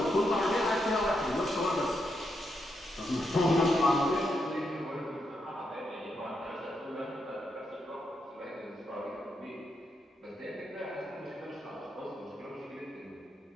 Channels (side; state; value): both; normal; correlation 0.82